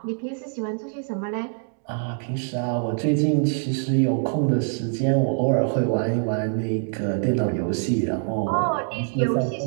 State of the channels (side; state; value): left; silent; 59 dB below the other